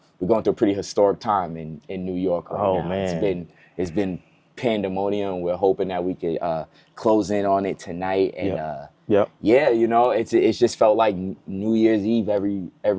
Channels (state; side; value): identical; both; correlation 1.00